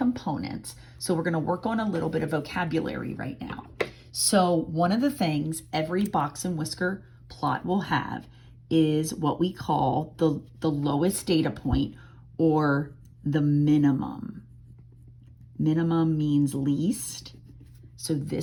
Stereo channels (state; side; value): identical; both; correlation 1.00